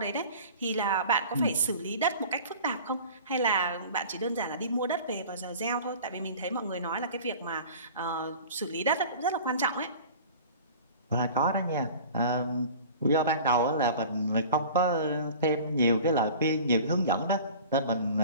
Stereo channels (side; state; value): both; inverted; correlation -0.41